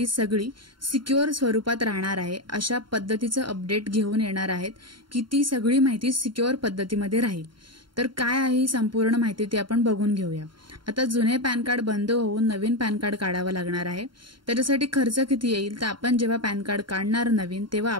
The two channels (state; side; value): late; left; 0.73 ms